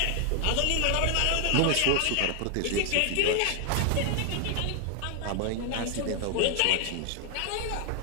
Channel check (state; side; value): different; both; correlation 0.00